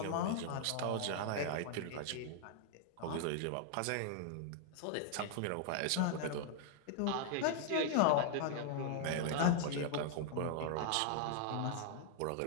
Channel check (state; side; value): different; both; correlation 0.00